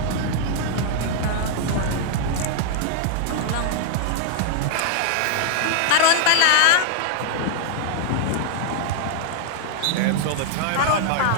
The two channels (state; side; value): different; both; correlation -0.01